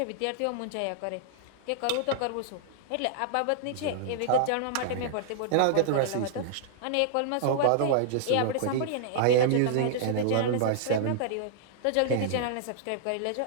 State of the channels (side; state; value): both; different; correlation -0.01